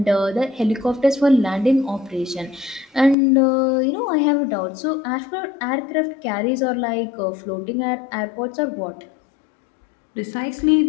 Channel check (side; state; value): right; drops out; at 3.2 s